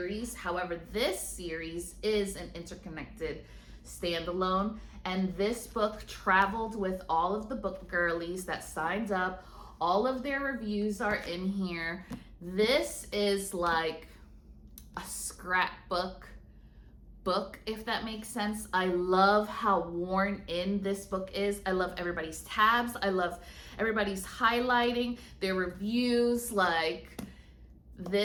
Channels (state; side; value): identical; both; correlation 1.00